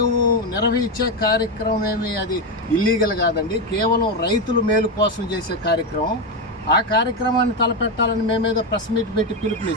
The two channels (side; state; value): both; normal; correlation 0.10